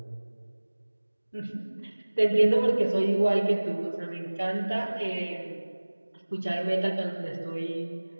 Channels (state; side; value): inverted; both; correlation -1.00